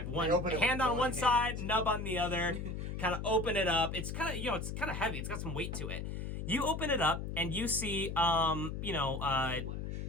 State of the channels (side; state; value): left; noise; hum, 5 dB below the sound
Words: have one open it with hand on one one hand. side, nub on the other. Kind of open it up. It's kind of it's kind of heavy. It's got some weight to it. You open it up, and you see